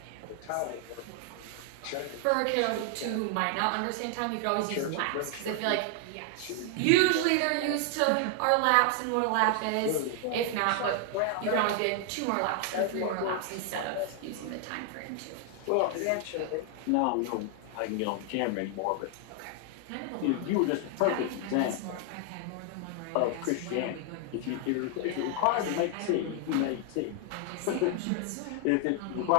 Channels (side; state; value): both; different; correlation 0.00